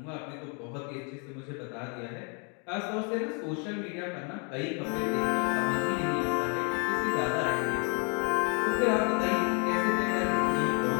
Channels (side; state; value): right; quieter; 37.0 dB